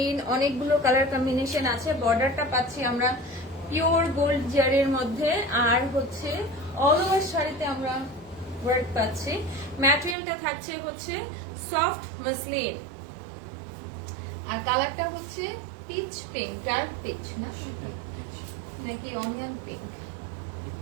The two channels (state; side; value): drops out; left; at 10.2 s